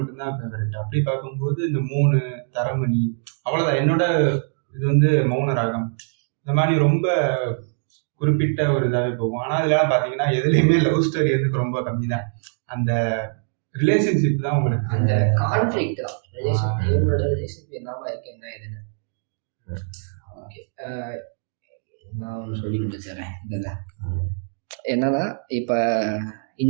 ஃபேவரட். அப்படி பார்க்கும்போது இந்த 3 தரமணி அவ்வளோதான். என்னோட இது வந்து மௌன ராகம் இந்த மாதிரி ரொம்ப குறிப்பிட்ட ஒரு இதாகவே போகும். ஆனால் அதெல்லாம் பார்த்தீங்கன்னா எதுலேயுமே லவ் ஸ்டோரி வந்து ரொம்ப கம்மி தான். அந்த ரிலேஷன்ஷிப் தான் உங்களுக்கு, அந்த கான்ஃப்ளிக்ட் தான் ரிலேஷன்ஷிப் என்னவா இருக்கு என்ன இதுன்னு. ஓகே, நான் ஒன்று சொல்லி முடிச்சிடறேன். இதில் என்னன்னா இப்போ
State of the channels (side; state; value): left; silent; digital silence